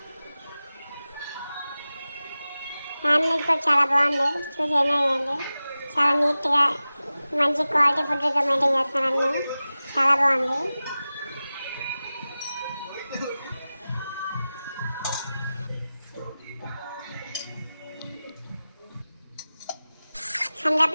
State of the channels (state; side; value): inverted; both; correlation -0.95